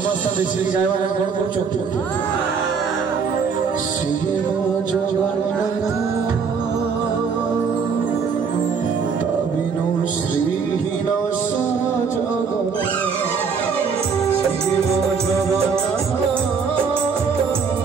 देखिए गायवा कौन कौन चुप शिव जगन्नाथ तबिनु श्रीहीन सारा जगत शिव जगन्नाथ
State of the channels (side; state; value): left; quieter; 5.8 dB